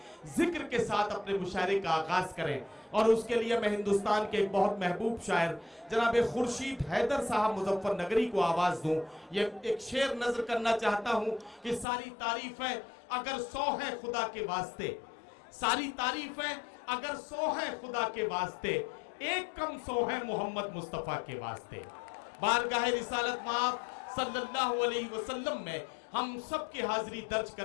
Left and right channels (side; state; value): right; drops out; at 11.9 s